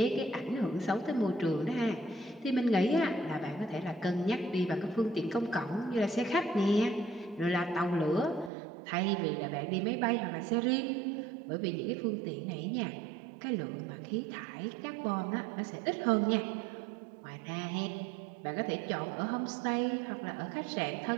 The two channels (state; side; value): drops out; left; at 8.5 s